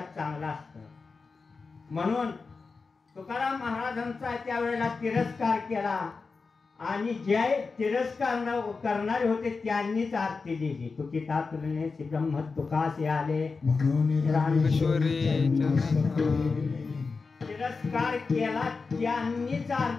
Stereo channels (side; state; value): right; quieter; 4.5 dB